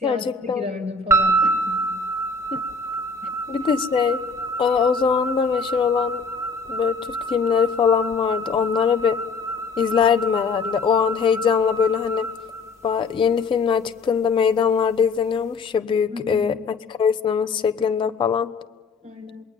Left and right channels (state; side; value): quieter; right; 4.6 dB